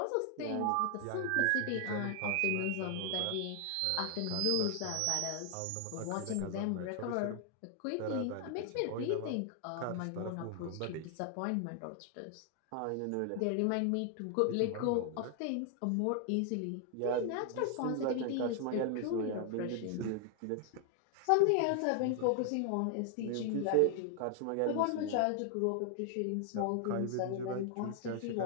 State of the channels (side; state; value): both; different; correlation 0.00